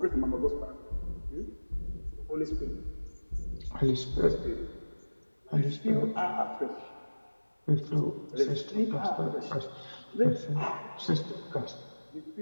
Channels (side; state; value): both; inverted; correlation -1.00